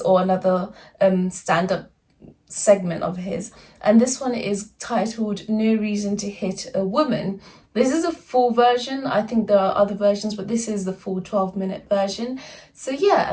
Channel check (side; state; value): both; identical; correlation 1.00